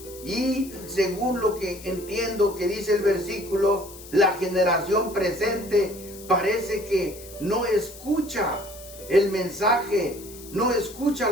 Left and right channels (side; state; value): left; noise; hiss, 17 dB below the sound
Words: y según lo que entiendo que dice el versículo, la generación presente parece que no escucha el mensaje, no escucha